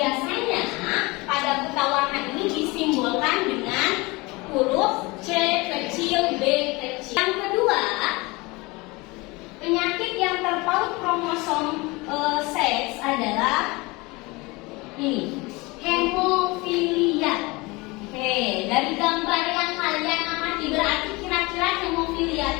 pada buta warna ini disimbolkan dengan huruf C kecil, B kecil. Yang kedua, penyakit yang terpaut kromosom seks adalah ini, hemofilia. Oke, dari gambar yang kalian amati, berarti kira-kira hemofilia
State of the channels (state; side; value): quieter; right; 24.2 dB